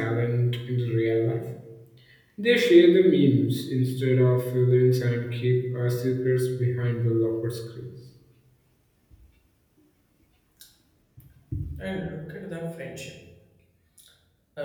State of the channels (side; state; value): both; identical; correlation 1.00